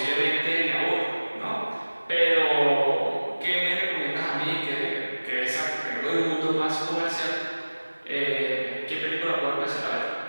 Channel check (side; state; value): both; inverted; correlation -1.00